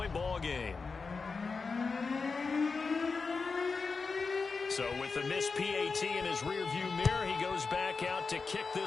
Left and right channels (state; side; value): quieter; right; 4.6 dB